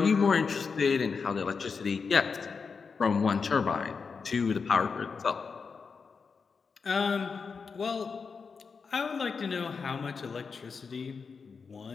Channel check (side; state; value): right; quieter; 5.3 dB